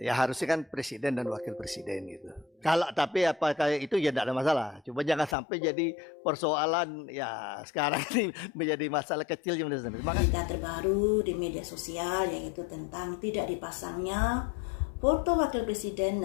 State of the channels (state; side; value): drops out; right; at 5.4 s